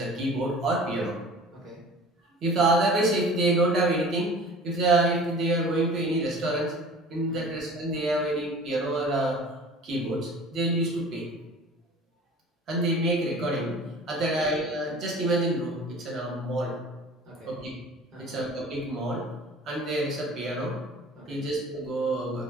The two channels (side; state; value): both; normal; correlation 0.43